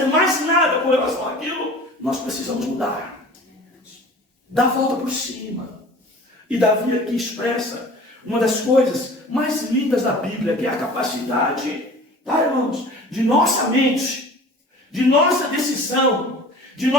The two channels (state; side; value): normal; both; correlation 0.43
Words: mais nada com relação àquilo. Nós precisamos mudar, dar a volta por cima. E Davi aqui expressa uma das coisas mais lindas da Bíblia, que é a capacidade, tá, irmãos, de nossa mente, de nossa decisão, de